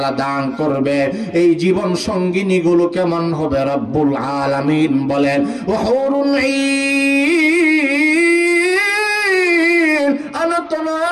দান করবে। এই জীবন সঙ্গিনী গুলো কেমন হবে? রব্বুল আলামিন বলেন, ওয়াহুরুন ঈন আনত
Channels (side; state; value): both; identical; correlation 1.00